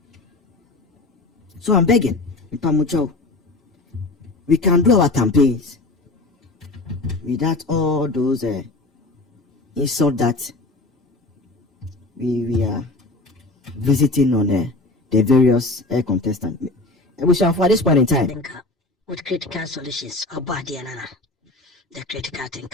So I'm begging, we can do our campaigns without all those insults that we are visiting on the various contestants. We shall, for this point in time, with critical solutions or body and the critical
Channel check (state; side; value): quieter; right; 3.1 dB